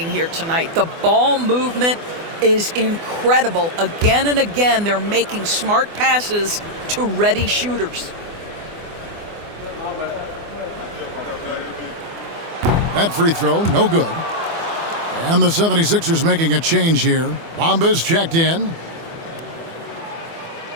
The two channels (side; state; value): left; late; 24 ms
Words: here tonight, the ball movement is incredible. Again and again, they're making smart passes to ready shooters. That free throw, no good. And the 76ers making a change here. Bamba's checked in.